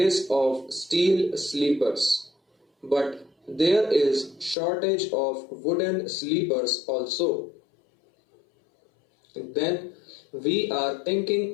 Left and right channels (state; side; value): drops out; right; at 4.5 s